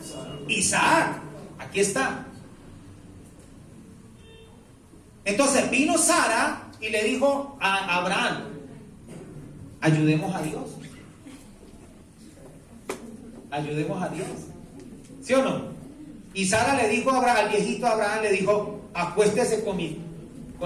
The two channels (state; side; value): identical; both; correlation 1.00